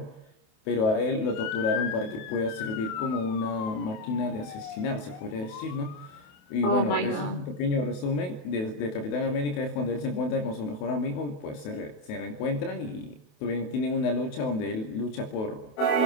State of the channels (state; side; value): late; right; 28 ms